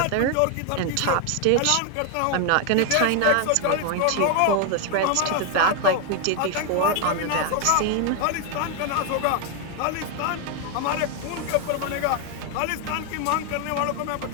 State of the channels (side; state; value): both; different; correlation 0.00